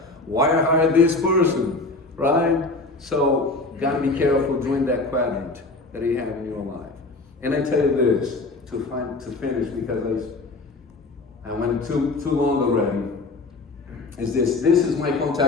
Why I hired this person, right? So, gotta be careful during that quadrant that you have in your life. And I tell you this, to finish, because I went too long already, is this is my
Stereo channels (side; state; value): right; quieter; 3.3 dB